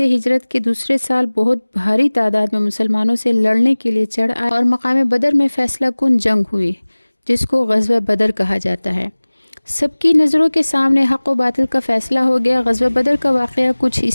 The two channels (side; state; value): both; inverted; correlation -1.00